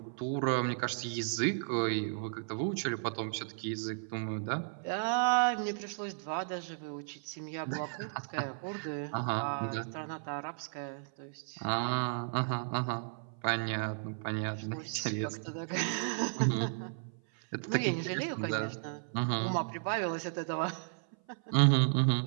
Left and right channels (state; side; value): silent; left; 55 dB below the other